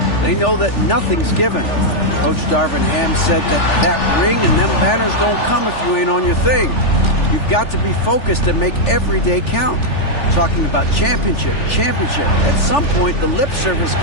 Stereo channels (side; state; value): right; late; 3.4 ms